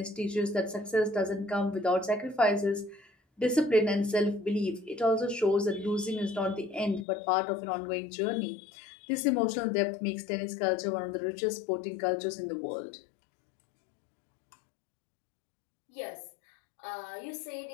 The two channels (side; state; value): right; drops out; at 7.1 s